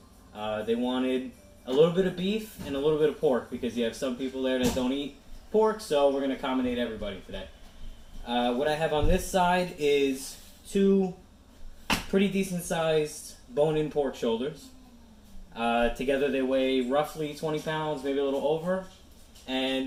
They wanted a little bit of beef and a little bit of pork because you have some people there that don't eat pork, so we're going to accommodate everybody today. What I have on this side is two pretty decent sized bone-in pork shoulders. Together they weigh roughly 20 pounds, maybe a little over.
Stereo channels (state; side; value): identical; both; correlation 1.00